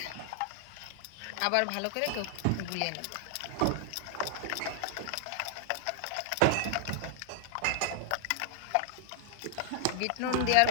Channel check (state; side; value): different; both; correlation 0.00